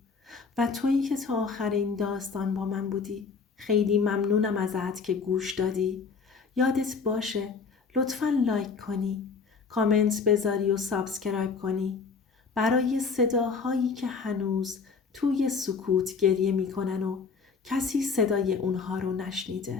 و تویی که تا آخر این داستان با من بودی خیلی ممنونم ازت که گوش دادی. یادت باشه لطفاً لایک کنی، کامنت بذاری و سابسکرایب کنی برای صداهایی که هنوز توی سکوت گریه میکنن و کسی صدای اونها رو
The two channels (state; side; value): quieter; right; 5.1 dB